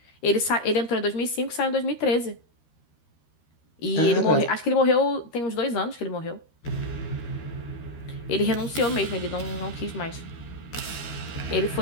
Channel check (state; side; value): late; right; 13 ms